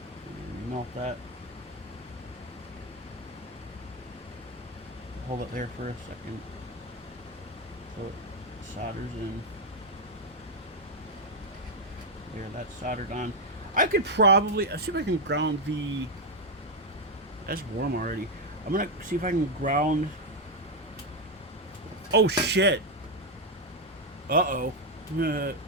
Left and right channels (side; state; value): both; normal; correlation 0.04